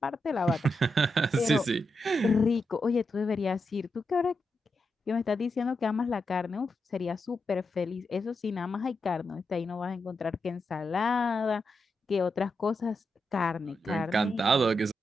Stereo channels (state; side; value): normal; both; correlation 0.86